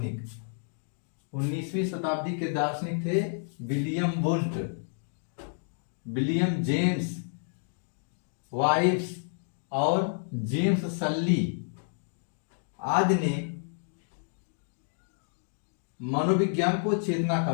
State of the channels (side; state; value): right; silent; digital silence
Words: 19वीं शताब्दी के दार्शनिक थे William Wundt, William James vibes और जेम्स सल्ली आदि ने मनोविज्ञान को चेतना का